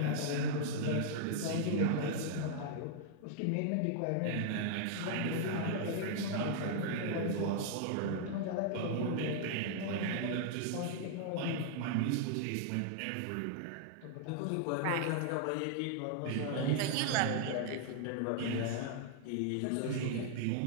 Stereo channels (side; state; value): both; different; correlation -0.01